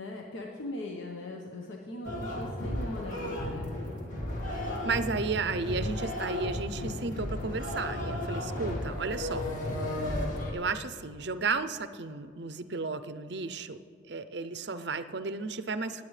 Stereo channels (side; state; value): both; normal; correlation 0.33